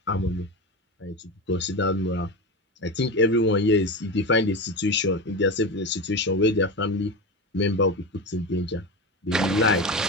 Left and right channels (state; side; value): normal; both; correlation 0.21